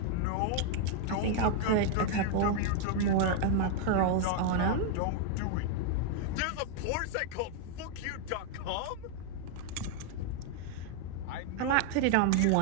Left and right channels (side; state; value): both; different; correlation 0.00